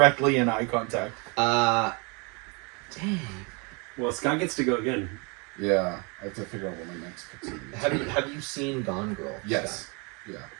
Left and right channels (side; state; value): left; quieter; 31.6 dB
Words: in eye contact. Dang. Well, Scott gets to go again. Yeah, I have to figure out what my next pick's gonna be. Have you seen Gone Girl? Yes. Scott?